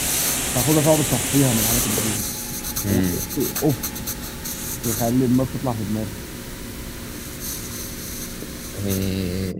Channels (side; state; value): both; identical; correlation 1.00